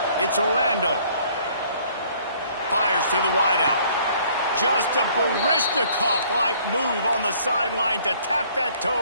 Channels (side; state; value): both; inverted; correlation -0.59